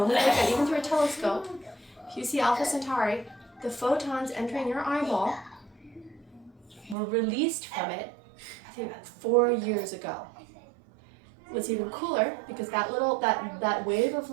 even through a telescope, if you see Alpha Centauri, the photons entering your eyeball were released from it, I think, 4 years ago. What's even cooler, because that wave of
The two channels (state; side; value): drops out; left; at 7.0 s